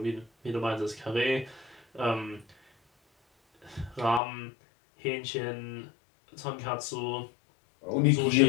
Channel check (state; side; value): drops out; right; at 4.2 s